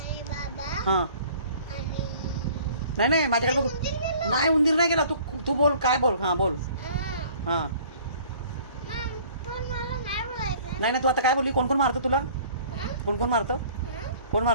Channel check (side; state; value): both; inverted; correlation -0.52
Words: बाबा हां. आणि नाही नाही माझ्याकडे बघ. उंदीर गेला. नाही उंदीर नाही गेला. तू तू बोल, काय बोल. हां बोल. हां. हां. मग पण मला नाही बोलायचं. नाही नाही तू आता काय बोलली? कोण कोण मारतं तुला? हां? कोण कोण मारतं? हां? कोण